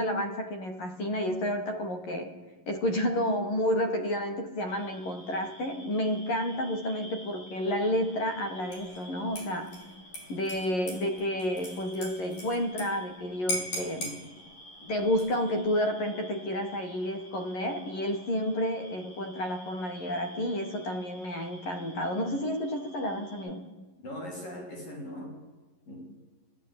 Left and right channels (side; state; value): right; late; 11 ms